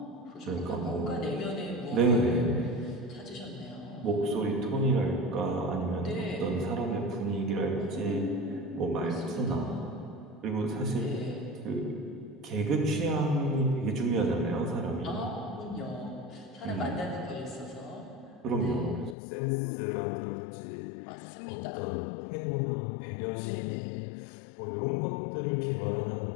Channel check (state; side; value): drops out; right; at 19.2 s